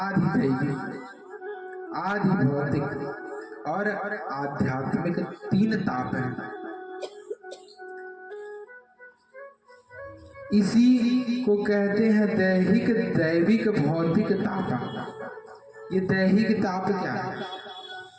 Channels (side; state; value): both; identical; correlation 1.00